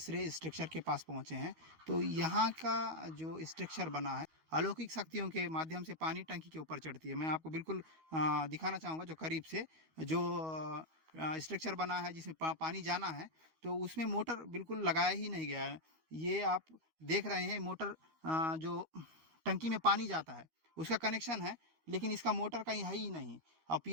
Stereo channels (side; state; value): left; late; 13 ms